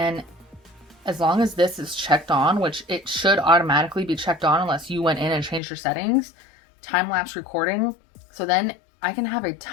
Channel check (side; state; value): right; drops out; at 5.6 s